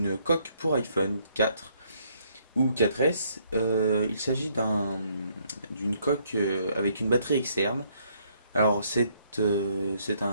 coque pour iPhone 4 ou 4S. Il s'agit d'une coque avec une batterie externe. Alors c'est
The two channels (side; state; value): both; inverted; correlation -0.69